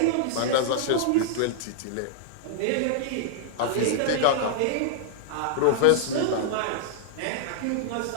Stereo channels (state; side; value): different; both; correlation -0.01